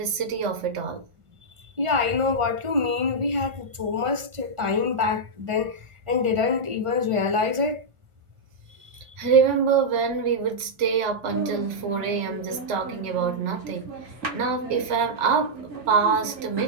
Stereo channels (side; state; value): left; late; 1.4 ms